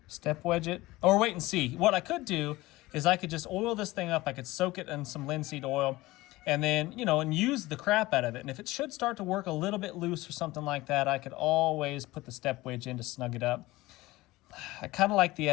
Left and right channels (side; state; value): right; quieter; 19.2 dB